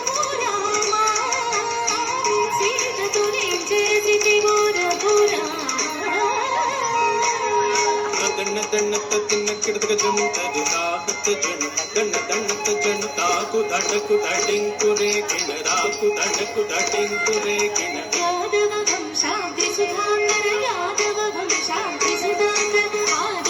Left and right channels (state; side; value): identical; both; correlation 1.00